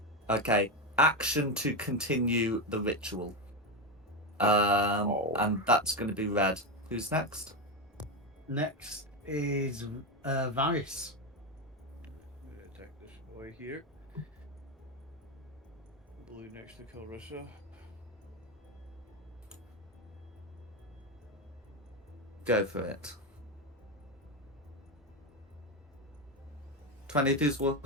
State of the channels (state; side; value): normal; both; correlation 0.12